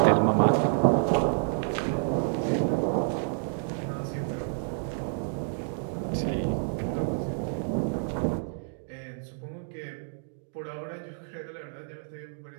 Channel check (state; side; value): silent; left; digital silence